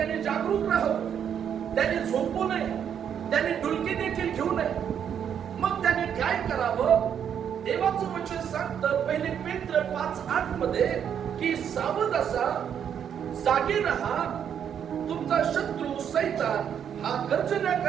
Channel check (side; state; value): left; quieter; 8.5 dB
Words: जागरूक राहावं, त्याने झोपू नये, त्याने डुलकी देखील घेऊ नये. मग त्याने काय करावं? देवाचं वचन सांगतं पहिले पेत्र 5:8 मध्ये की सावध असा, जागे राहा, तुमचा शत्रू सैतान हा गर्जना